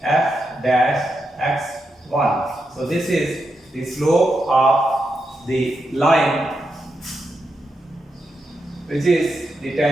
f dash x1. So this is the slope of the line which is the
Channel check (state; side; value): normal; both; correlation 0.85